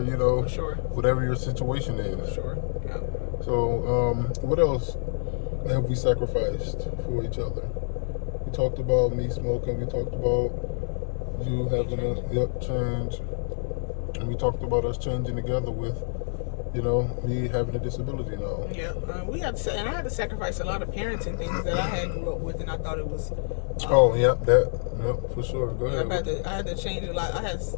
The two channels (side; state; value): right; silent; 59 dB below the other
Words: you know, whatever your situation is. For sure. Yeah. So, what else have we sacrificed for each other? We talked about me smoking. We talked about you having a change. And we talked about us changing together with, you know, me having a disability now. Yeah, we had to, and I had to sacrifice a lot of parenting things that I had grew up with, and I thought it was. For sure. Go ahead. I had to change a lot. I